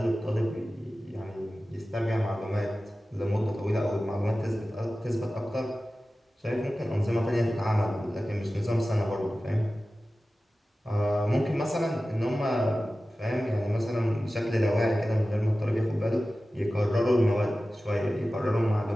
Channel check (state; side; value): normal; both; correlation 0.95